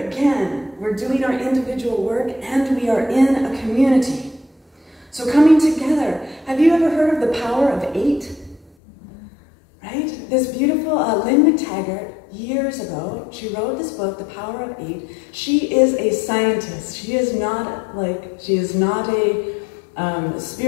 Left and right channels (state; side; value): drops out; right; at 8.7 s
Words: again, we're doing our individual work and we are in a community. So coming together, have you ever heard of the power of 8? Right? This beautiful Lynn McTaggart, years ago, she wrote this book, The Power of 8. She is a scientist. She is not a